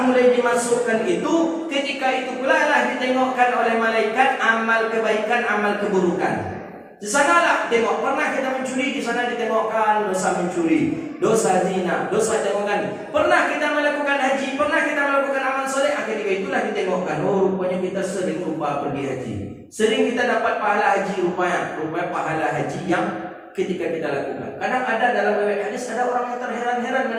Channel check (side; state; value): both; identical; correlation 1.00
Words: mulai dimasukkan itu, ketika itu pula lah ditengokkan oleh malaikat amal kebaikan, amal keburukan. Di sanalah tengok, pernah kita mencuri, di sana ditengokkan dosa mencuri, dosa zina, dosa tengokkan. Pernah kita melakukan haji, pernah kita melakukan amal soleh, ketika itulah ditengokkan. Oh, rupanya kita sering lupa pergi haji. Sering kita dapat pahala haji rupanya pahala haji yang ketika kita lakukan. Kadang ada dalam riwayat hadis ada orang yang terheran-heran